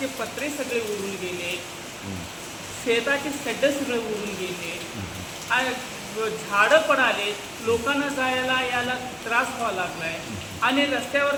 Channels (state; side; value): identical; both; correlation 1.00